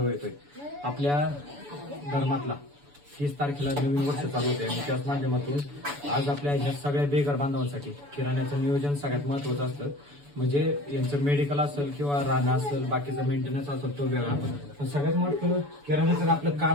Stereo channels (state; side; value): late; left; 7.0 ms